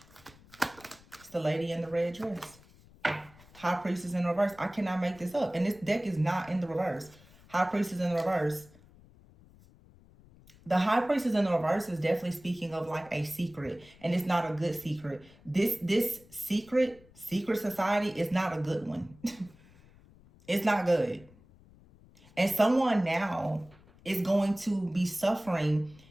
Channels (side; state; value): left; noise; rumble, 25 dB below the sound